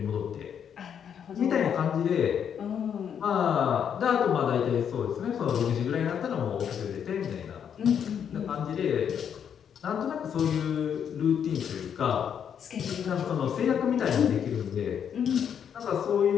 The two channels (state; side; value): quieter; right; 8.2 dB